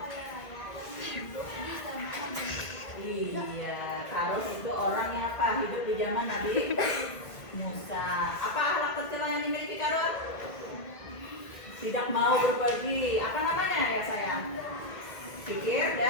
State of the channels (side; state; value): right; late; 1.6 ms